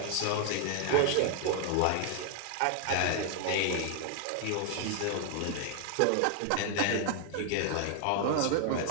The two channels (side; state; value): both; different; correlation 0.00